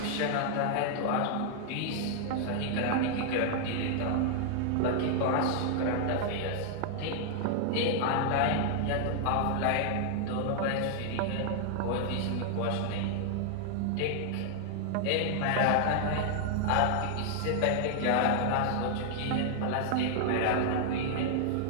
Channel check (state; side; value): different; both; correlation -0.01